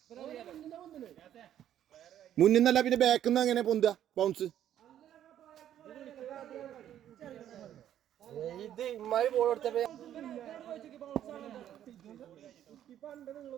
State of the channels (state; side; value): quieter; left; 11.0 dB